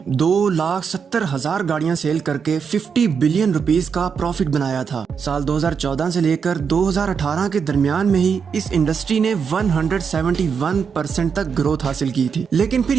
2,70,000 گاڑیاں سیل کر کے 50 بلین روپیز کا پروفٹ بنایا تھا۔ سال 2014 سے لے کر 2018 کے درمیان میں ہی اس انڈسٹری نے 171% تک گروتھ حاصل کی تھی، لیکن پھر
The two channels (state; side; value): quieter; left; 6.3 dB